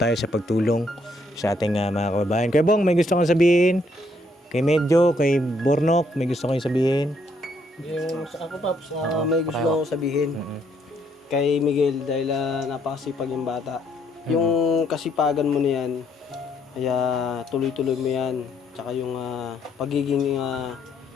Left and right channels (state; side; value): normal; both; correlation 0.70